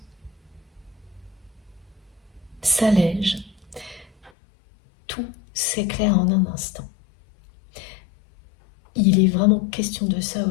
s'allègent, tout s'éclaire en un instant. Il est vraiment question de ça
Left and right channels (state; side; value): drops out; right; at 4.3 s